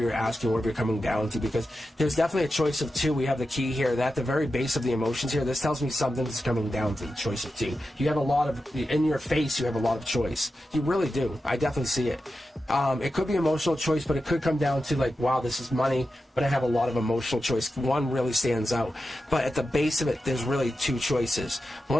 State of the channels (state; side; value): normal; both; correlation 0.91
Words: asking, whatever you're coming down to, because there's definitely a choice of two. We have the key here. At the very base of the emotions here, this tells me something's coming down to the choice of two. You have a lot of, in your face, you have a lot of choice. You really do. I definitely see it. It could be emotional choice, but it could come down to like, wow, this is money, but I have a lot of emotional choice. One really stands out. But at the base of it, there's really two choices.